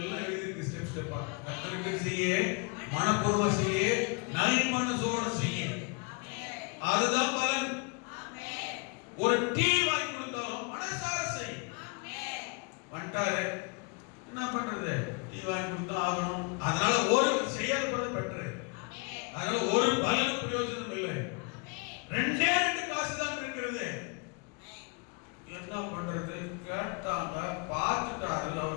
எழுதிருக்கு ஸ்டெப் ஸ்டெப்பா. கர்த்தருக்கு செய்ய, மனப்பூர்வமா செய்ய, நல் மனசோட செய்ய, அதுதான் பலன். ஒரு டீ வாங்கி கொடுத்தாலும் மனசார செய். வந்துட்டாரு என்ன பண்றது, டீ வாங்கி கொடுத்தா ஆகணும், அதனால ஒரு செய்யாத பலன் பெற்று, அதனால ஒரு பலன் பிரயோஜனம் இல்லை. 2 காசு தான் இருக்கிறது. என்ன பண்றது, கேட்டாங்க, பார்த்துட்டாரு,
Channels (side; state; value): right; quieter; 31.8 dB